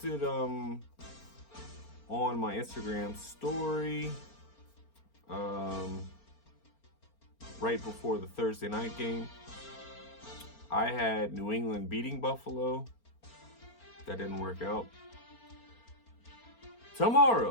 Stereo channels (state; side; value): late; right; 4.4 ms